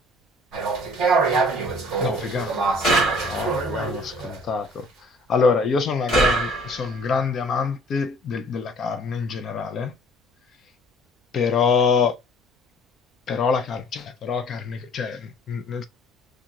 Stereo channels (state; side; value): normal; both; correlation 0.54